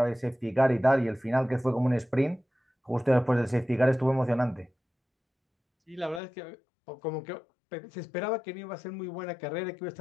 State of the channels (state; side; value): drops out; right; at 6.2 s